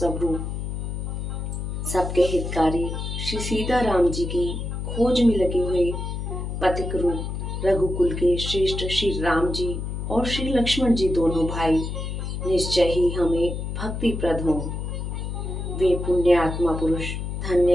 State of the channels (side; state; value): left; noise; hum, 4 dB below the sound